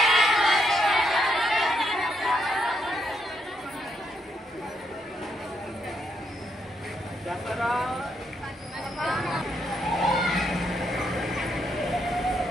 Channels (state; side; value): normal; both; correlation 0.78